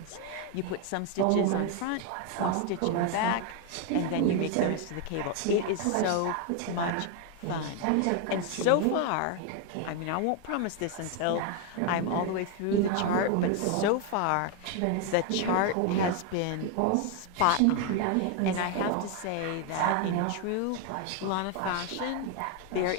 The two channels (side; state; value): both; different; correlation 0.01